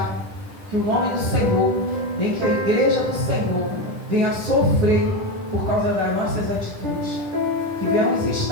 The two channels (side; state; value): left; late; 9.9 ms